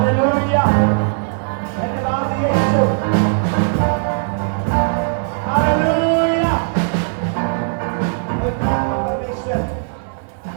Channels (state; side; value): silent; left; digital silence